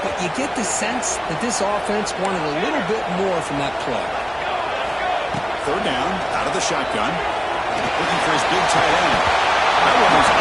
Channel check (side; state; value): both; identical; correlation 1.00